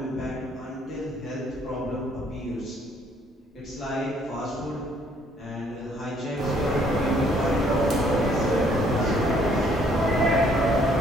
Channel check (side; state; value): both; normal; correlation 0.64